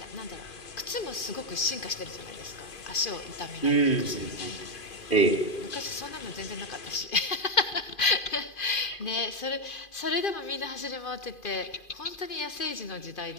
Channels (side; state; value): right; late; 2.5 ms